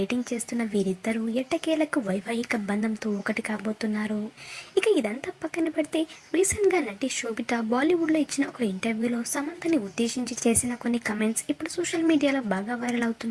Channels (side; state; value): both; identical; correlation 1.00